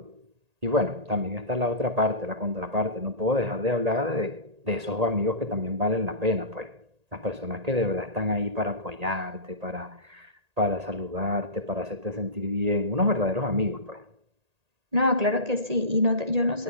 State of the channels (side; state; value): left; late; 1.8 ms